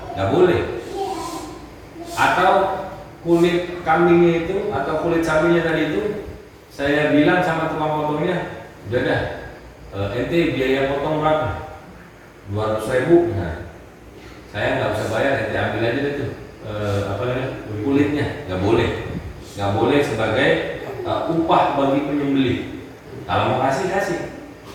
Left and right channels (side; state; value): both; identical; correlation 1.00